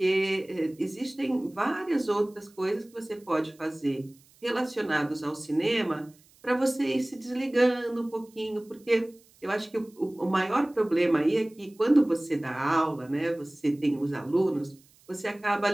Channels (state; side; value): noise; right; hiss, 29 dB below the sound